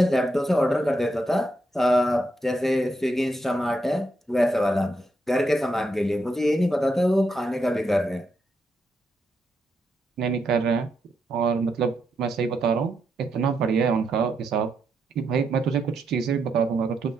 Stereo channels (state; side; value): normal; both; correlation 0.81